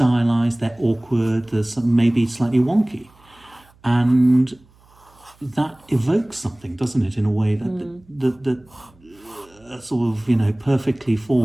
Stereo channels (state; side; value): noise; right; hum, 30 dB below the sound